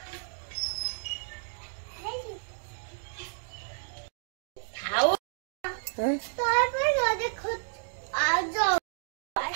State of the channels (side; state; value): left; silent; digital silence